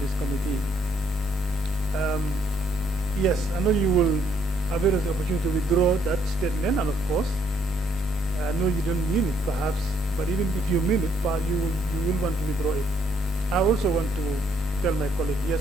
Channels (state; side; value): normal; both; correlation 0.68